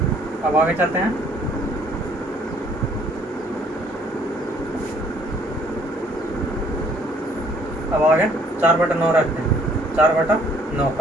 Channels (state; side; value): normal; both; correlation 0.62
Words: अब आगे चलते हैं, अब आगे 4/9 रखते हैं, 4/9